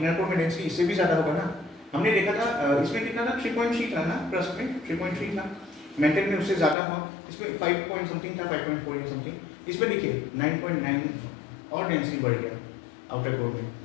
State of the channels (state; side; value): drops out; right; at 6.8 s